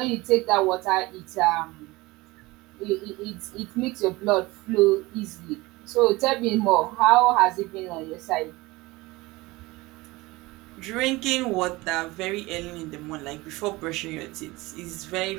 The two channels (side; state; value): left; quieter; 21.4 dB